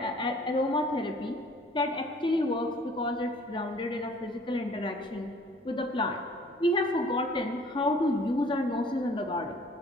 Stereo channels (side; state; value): both; normal; correlation 0.54